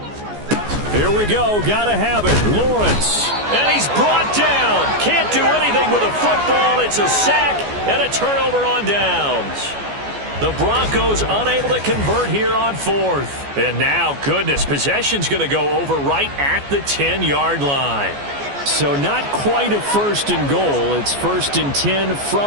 Here we go. Got to have it. Lawrence. And he's brought down. Can't do anything with a football. It's a sack and a turnover on downs. The Broncos unable to convert here on 4th. And now, goodness, possession's going to go over right at the 10-yard line. So not quite a 1st and goal. It's 1st and 10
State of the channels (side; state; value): left; late; 14 ms